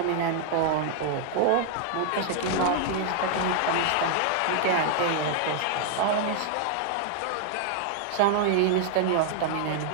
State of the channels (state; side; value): different; both; correlation 0.00